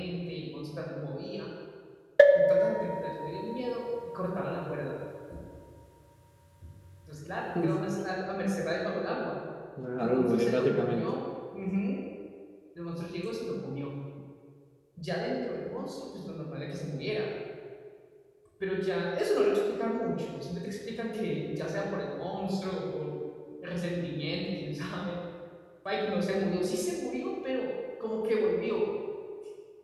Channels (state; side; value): identical; both; correlation 1.00